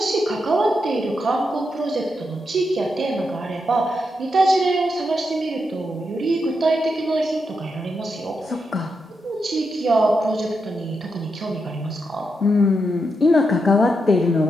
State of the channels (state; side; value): normal; both; correlation 0.84